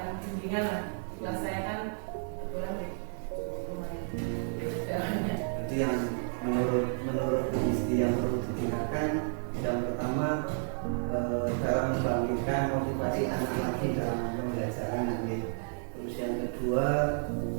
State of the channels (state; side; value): silent; left; 57 dB below the other